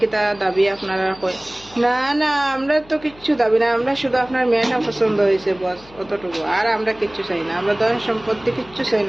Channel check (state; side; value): noise; left; hum, 24 dB below the sound